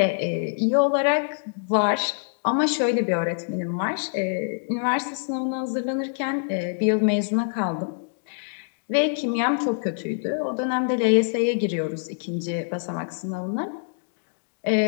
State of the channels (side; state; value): right; silent; digital silence